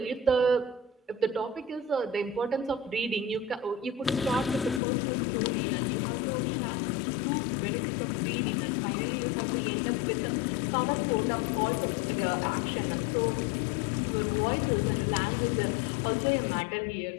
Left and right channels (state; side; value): drops out; right; at 4.8 s